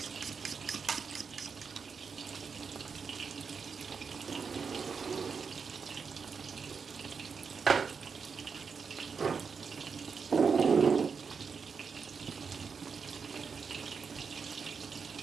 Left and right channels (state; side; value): quieter; left; 5.6 dB